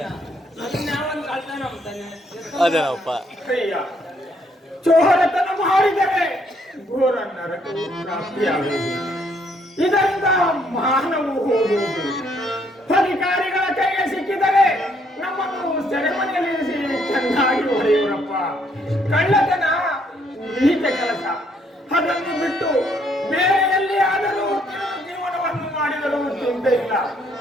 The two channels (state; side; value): normal; both; correlation 0.69